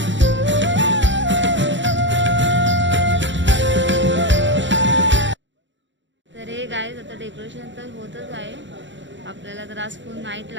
गाईज आता डेकोरेशन तर होतच आहे. आपल्याला तर आज फुल नाईट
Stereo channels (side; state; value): left; late; 0.54 ms